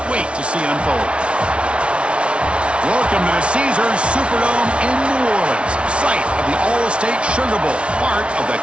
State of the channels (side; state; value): left; late; 0.059 ms